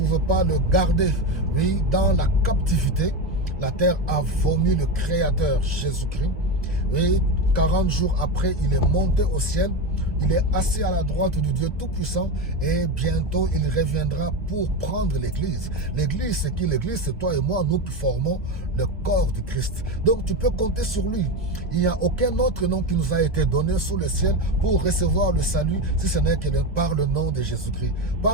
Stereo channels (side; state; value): both; normal; correlation 0.17